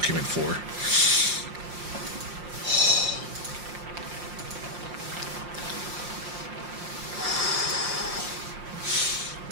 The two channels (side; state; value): left; late; 5.7 ms